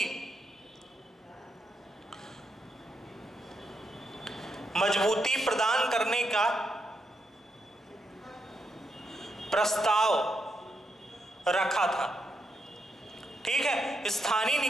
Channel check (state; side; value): normal; both; correlation 0.82